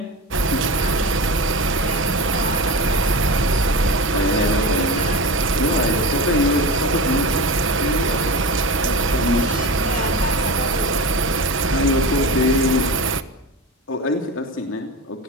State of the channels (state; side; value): normal; both; correlation 0.27